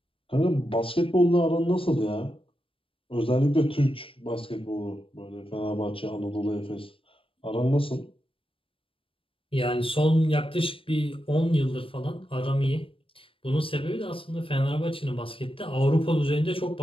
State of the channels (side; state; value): right; late; 0.26 ms